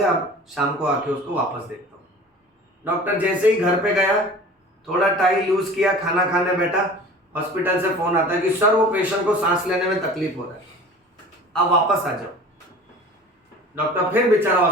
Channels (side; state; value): both; normal; correlation 0.41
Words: अब शाम को आके उसको वापस देखता हूं। डॉक्टर जैसे ही घर पे गया, थोड़ा टाइम यूज किया, खाना खाने बैठा, हॉस्पिटल से फोन आता है कि सर वो पेशेंट को सांस लेने में तकलीफ हो रहा है, अब वापस आ जाओ। डॉक्टर फिर बेचारा